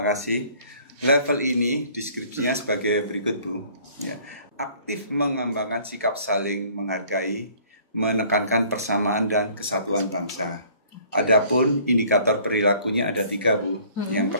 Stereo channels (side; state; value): both; inverted; correlation -0.55